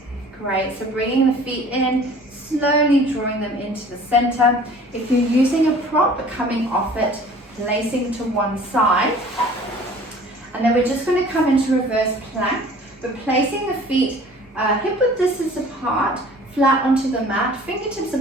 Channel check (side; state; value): both; normal; correlation 0.48